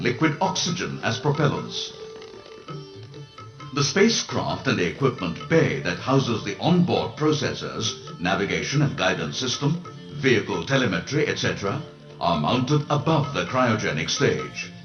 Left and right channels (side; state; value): both; identical; correlation 1.00